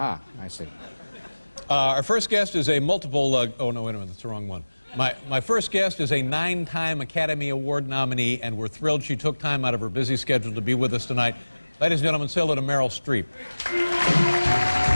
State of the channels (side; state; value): both; inverted; correlation -1.00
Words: I see. Our first guest is a multiple, oh no, wait a minute, that's the wrong one. My first guest is a 9-time Academy Award nominee, and we're thrilled she took time out of her busy schedule to be with us tonight. Ladies and gentlemen, say hello to Meryl Streep.